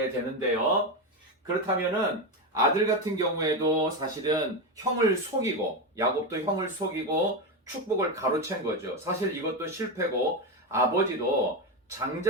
되는데요. 그렇다면은 아들 같은 경우에도 사실은 형을 속이고, 야곱도 형을 속이고 축복을 가로챈 거죠. 사실 이것도 실패고, 아버지도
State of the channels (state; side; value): normal; both; correlation 0.13